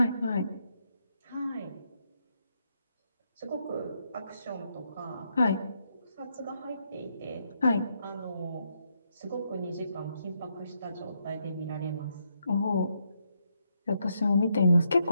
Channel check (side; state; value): both; inverted; correlation -0.78